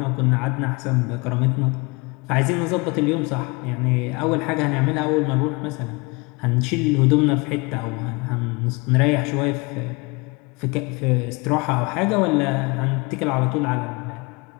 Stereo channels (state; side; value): quieter; right; 27.5 dB